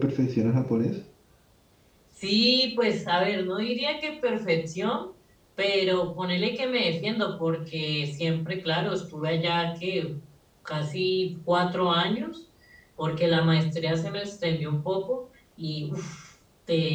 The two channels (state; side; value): identical; both; correlation 1.00